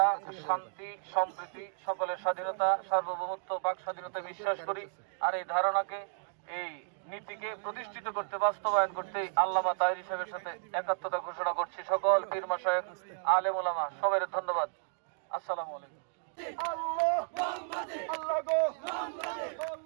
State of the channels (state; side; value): silent; left; digital silence